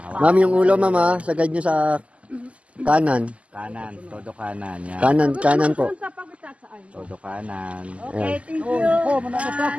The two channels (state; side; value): late; left; 0.062 ms